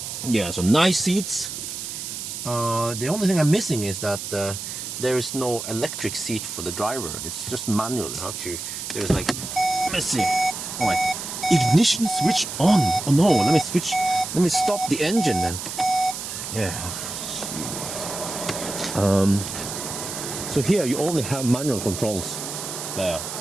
Yeah, so nice seats. The only thing I'm missing is that there is no electric seat for the driver. It's just manual. How to? There's like, let's see. Oh wait, ignition switch on. Oh no, let me switch. Let me stop the engine then. Yeah. So here you only have manual controls. Yeah.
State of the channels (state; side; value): noise; right; hiss, 7 dB below the sound